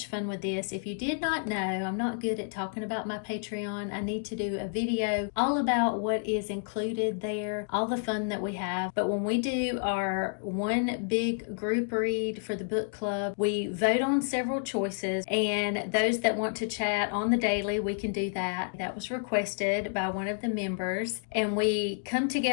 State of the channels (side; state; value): right; silent; digital silence